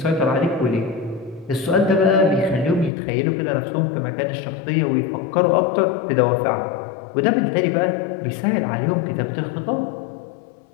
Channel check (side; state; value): right; drops out; at 2.9 s